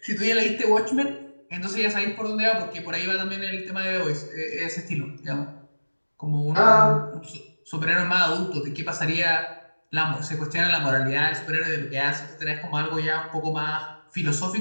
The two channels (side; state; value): both; inverted; correlation -1.00